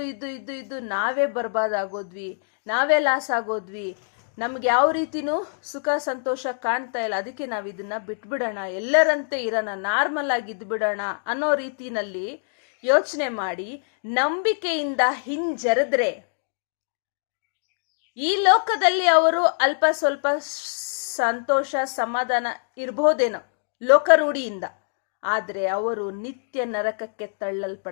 ಇದ್ದು ನಾವೇ ಬರ್ಬಾದ್ ಆಗೋದ್ವಿ, ನಾವೇ ಲಾಸ್ ಆಗೋದ್ವಿ, ನಮ್ಗೆ ಯಾವ ರೀತಿನೂ ಸುಖ ಸಂತೋಷ ಕಾಣ್ತಾ ಇಲ್ಲ, ಅದಕ್ಕೆ ನಾವು ಇದನ್ನ ಬಿಟ್ಬಿಡೋಣ, ಎಲ್ಲರಂತೆ ಇರೋಣ, ನಾರ್ಮಲ್ ಆಗಿ ಇದ್ಬಿಡೋಣ ಅನ್ನೋ ರೀತಿನಲ್ಲಿ ಯೋಚನೆ ಮಾಡಿ ನಂಬಿಕೆಯಿಂದ ಹಿಂಜರಿದ್ರೆ ಈ ಲೋಕದಲ್ಲಿ ಅವರು ಅಲ್ಪ ಸ್ವಲ್ಪ ಸಂತೋಷ ಸಮಾಧಾನ ಇರ್ಬೋದೇನೋ ಲೋಕರೂಢಿಯಿಂದ, ಆದರೆ ಅವರು ನಿತ್ಯ ನರಕಕ್ಕೆ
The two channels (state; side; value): silent; right; digital silence